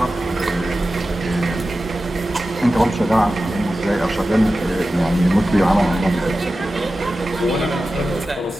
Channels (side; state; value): both; normal; correlation 0.94